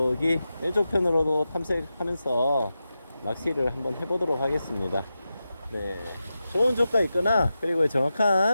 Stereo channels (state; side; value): inverted; both; correlation -0.91